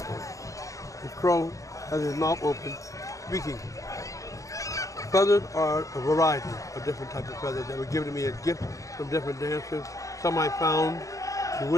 The crow has his mouth open, speaking. Feathers are a variety of different types of feathers that were given to me as gifts from different dancers. Some I found in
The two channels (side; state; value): right; late; 0.16 ms